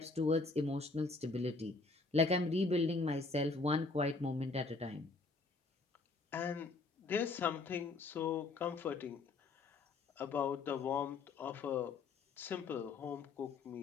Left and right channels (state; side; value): quieter; right; 3.7 dB